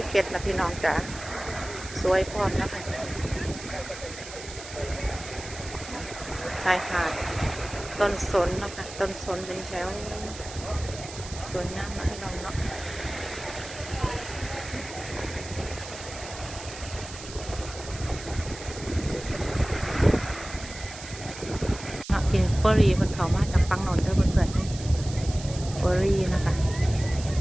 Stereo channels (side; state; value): right; noise; hiss, 13 dB below the sound